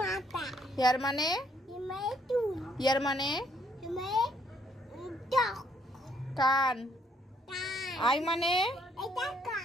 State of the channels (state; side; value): normal; both; correlation 0.69